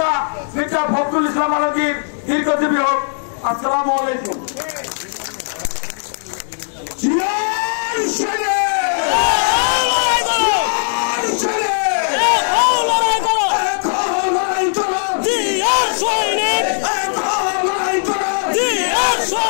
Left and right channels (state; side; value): silent; right; digital silence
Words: মির্জা ফখরুল ইসলাম আলমগীর দীর্ঘজীবী হোক। আসসালামু আলাইকুম।